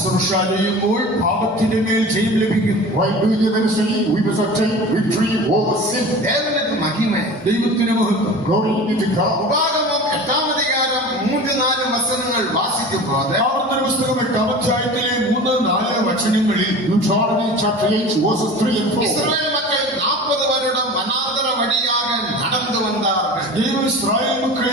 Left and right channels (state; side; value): normal; both; correlation 0.36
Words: ചെയ്യുമ്പോൾ പാപത്തിന്റെ മേൽ ജയം ലഭിക്കും. While doing the ministry, we must obtain victory over sin. ദേവനുക്ക് മഹിമ. ദൈവത്തിന് മഹത്വം. Glory be to God. ഉപാഗമം 8-ാം അധികാരം 3-4 വചനങ്ങൾ വാസിക്കുമ്പോൾ ആവർത്തന പുസ്തകം 8-ാം അധ്യായത്തിലെ 3-4 വചനങ്ങളിൽ Deuteronomy chapter 8 verses 3 and 4. Israel മക്കൾ 40 வருடம் വനാന്തര വഴിயாக നടന്നു വന്നാர்கள். ദൈവം ഇസ്രായേൽ